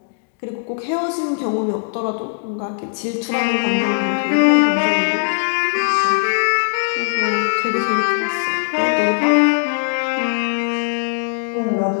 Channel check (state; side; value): silent; right; digital silence